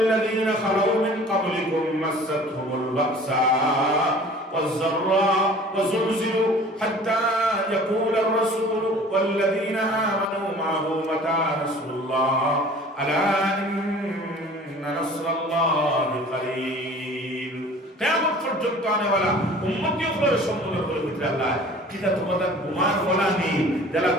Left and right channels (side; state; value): both; normal; correlation 0.46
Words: লাযীনা খালাউ মিন ক্বাবলিকুম মাসাতহুমুল বাসা والضراء وزلزلوا حتى يقول الرسول والذين آمنوا معه متى نصر الله ألا إن نصر الله قريب কিয়ামত পর্যন্ত আনেওয়ালা উম্মতিগুলোর সম্মুখের ভিতরে আল্লাহ কিটা তোমাদের গুমান বলা নেই যারা